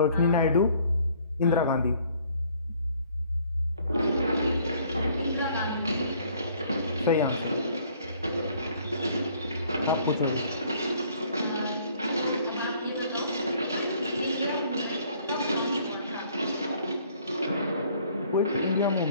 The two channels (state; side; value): inverted; both; correlation -0.60